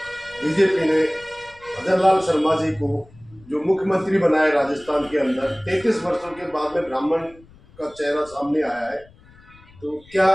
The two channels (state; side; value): noise; left; rumble, 25 dB below the sound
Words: बीजेपी ने भजन लाल शर्मा जी को जो मुख्यमंत्री बनाया राजस्थान के अंदर, 33 वर्षों के बाद में ब्राह्मण का चेहरा सामने आया है, तो क्या